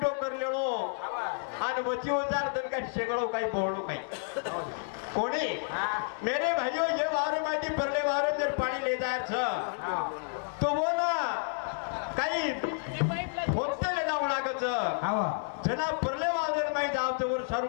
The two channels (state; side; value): silent; right; digital silence